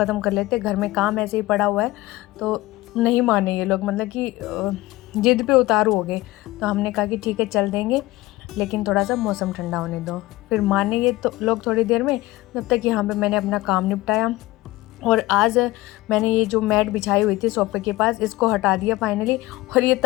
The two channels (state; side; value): quieter; right; 18.8 dB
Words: कर लेते, घर में काम ऐसे ही पड़ा हुआ है। तो नहीं माने ये लोग, मतलब कि जिद पे उतारू हो गए। तो हमने कहा कि ठीक है चल देंगे, लेकिन थोड़ा सा मौसम ठंडा होने दो। फिर माने ये तो लोग थोड़ी देर में, जब तक यहाँ पे मैंने अपना काम निपटाया। और आज मैंने ये जो मैट बिछाई हुई थी सोफे के पास, इसको हटा दिया फाइनली। और ये